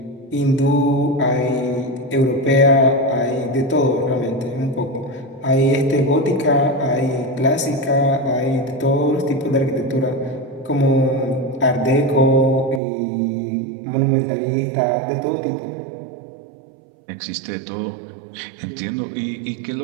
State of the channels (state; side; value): drops out; left; at 12.8 s